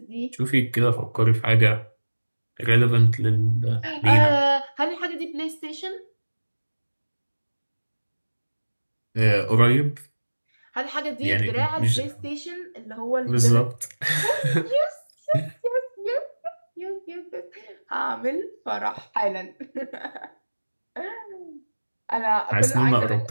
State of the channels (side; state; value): both; inverted; correlation -1.00